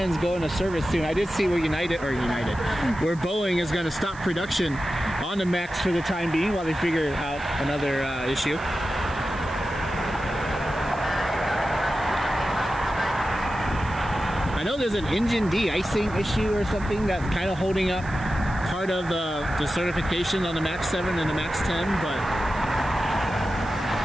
go into service soon. I did see where where Boeing is going to stop production on the MAX for the time being while they figure out another issue. I know there's an engine de-icing issue or something that's kind of holding up part of the certification on the MAX 7 and the MAX 10, but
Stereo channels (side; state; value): right; noise; hiss, 23 dB below the sound